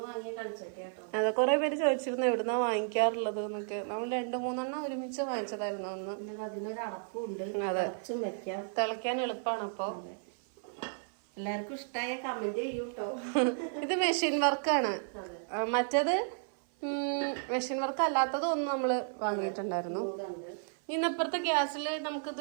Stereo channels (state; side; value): silent; left; 56 dB below the other